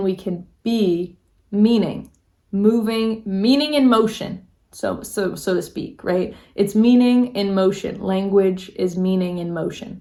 we can be meaning, moving, meaning in motion, so to speak, right? It's meaning in motion. Language is meaning in motion,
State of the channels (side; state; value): both; identical; correlation 1.00